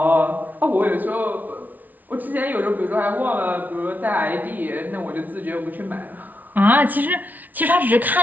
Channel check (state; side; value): late; left; 0.079 ms